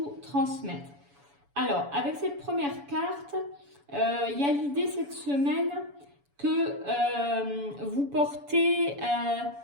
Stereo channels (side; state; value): left; late; 7.0 ms